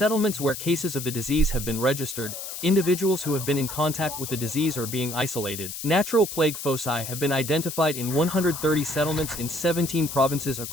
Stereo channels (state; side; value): noise; left; hiss, 8 dB below the sound